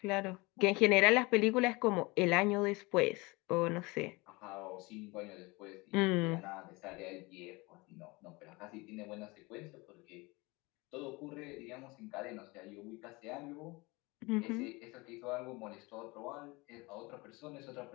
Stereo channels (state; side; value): quieter; right; 24.4 dB